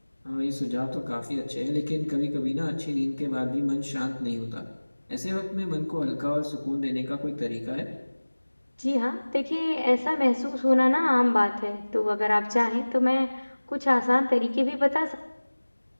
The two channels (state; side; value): inverted; both; correlation -1.00